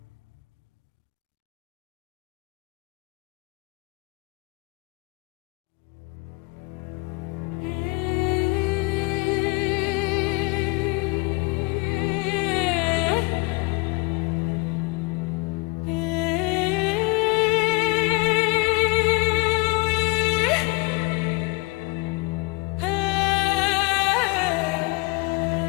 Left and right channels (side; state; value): right; quieter; 27.3 dB